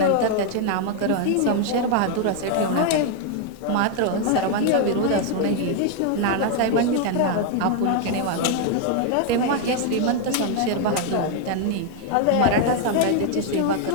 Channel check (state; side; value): different; both; correlation 0.00